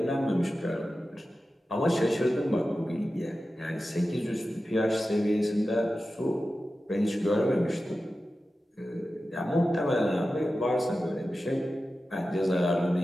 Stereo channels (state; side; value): normal; both; correlation 0.93